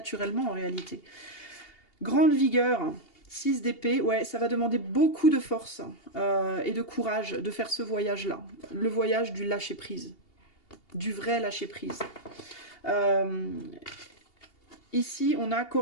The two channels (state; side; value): late; right; 2.8 ms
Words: en réalité. Grande vigueur, 6 d'épée, ouais, ça va demander beaucoup de force et de courage de faire ce voyage-là. Le voyage du lâcher-prise. Du vrai lâcher-prise. Ici, on a